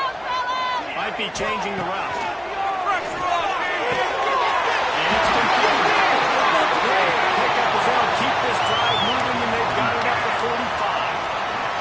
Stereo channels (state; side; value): identical; both; correlation 1.00